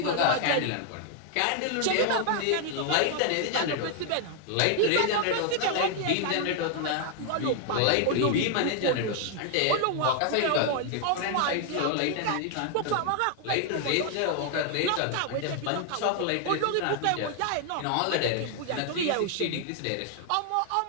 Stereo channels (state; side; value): different; both; correlation 0.00